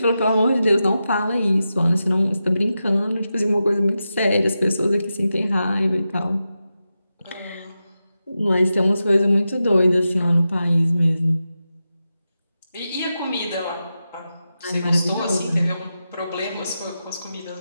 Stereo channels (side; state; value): both; inverted; correlation -0.90